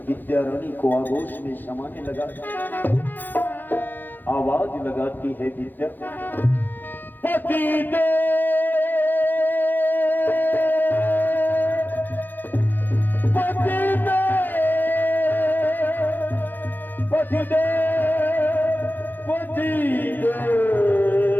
विद्या रानी को आगोश में समाने लगा। आवाज लगाती है विद्या, पतिदेव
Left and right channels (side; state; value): right; late; 0.088 ms